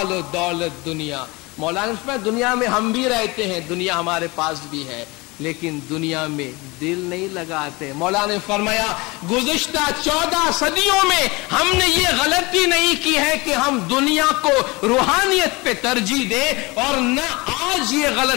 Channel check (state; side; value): quieter; right; 24.6 dB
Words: و دولت دنیا، مولانا اس میں دنیا میں ہم بھی رہتے ہیں، دنیا ہمارے پاس بھی ہے، لیکن دنیا میں دل نہیں لگاتے۔ مولانا نے فرمایا گزشتہ 14 صدیوں میں ہم نے یہ غلطی نہیں کی ہے کہ ہم دنیا کو روحانیت پہ ترجیح دیں، اور نہ آج یہ